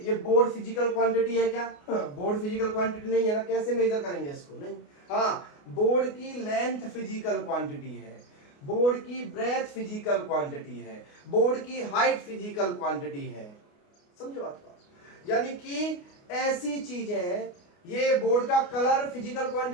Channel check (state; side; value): late; right; 29 ms